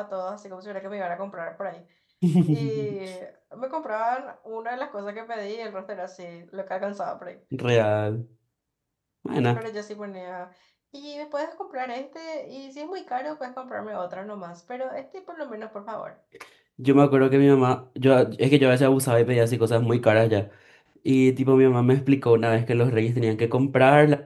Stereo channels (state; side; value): identical; both; correlation 1.00